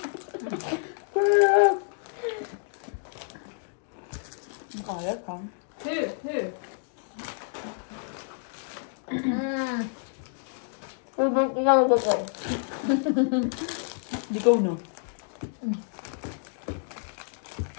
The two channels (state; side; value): silent; right; 59 dB below the other